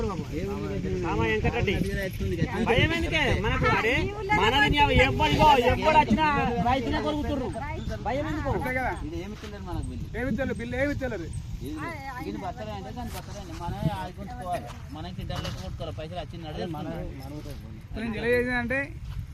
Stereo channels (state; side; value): identical; both; correlation 1.00